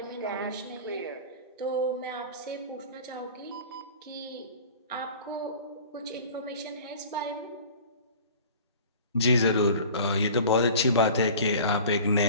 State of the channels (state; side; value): inverted; both; correlation -0.41